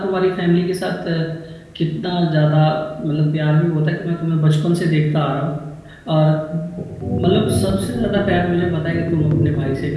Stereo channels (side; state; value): both; identical; correlation 1.00